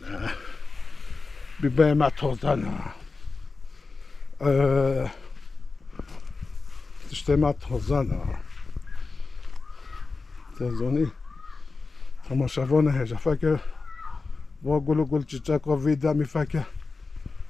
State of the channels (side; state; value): right; quieter; 4.1 dB